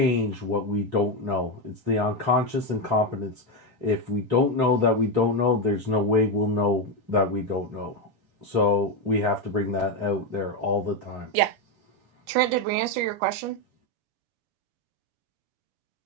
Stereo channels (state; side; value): late; left; 7.2 ms